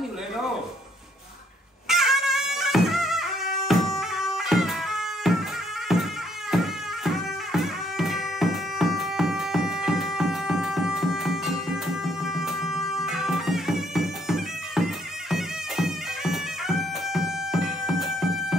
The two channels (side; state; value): both; normal; correlation 0.68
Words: hiểu lên ô